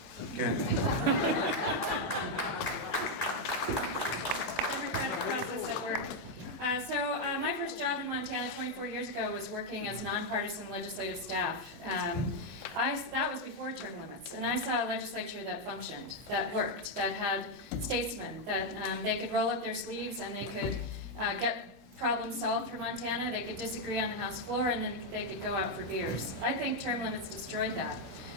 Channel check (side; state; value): both; normal; correlation 0.02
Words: Okay. My first job in Montana 24 years ago was working as nonpartisan legislative staff. That was before term limits, and I saw a legislature that functioned, that worked, that had statesmen, that they could roll up their sleeves and they could get problems solved for Montana. They could disagree on the House floor and then they could go out for beers. I think term limits destroyed that.